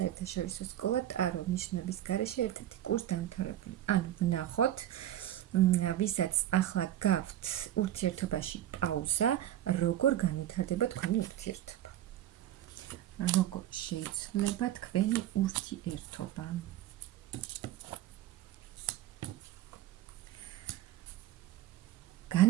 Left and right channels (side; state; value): left; quieter; 12.5 dB